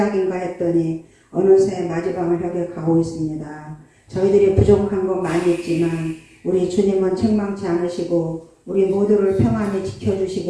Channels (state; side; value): identical; both; correlation 1.00